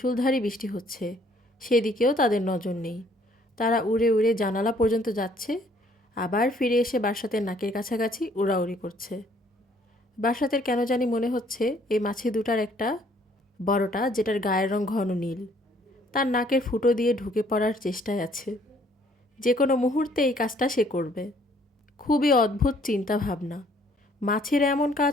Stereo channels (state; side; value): normal; both; correlation 0.62